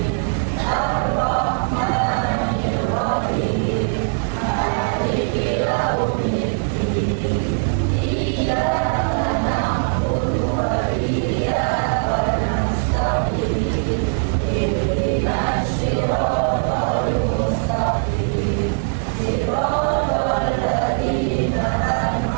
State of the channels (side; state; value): left; silent; digital silence